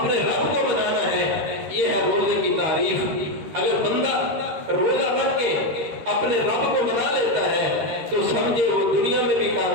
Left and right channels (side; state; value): left; late; 13 ms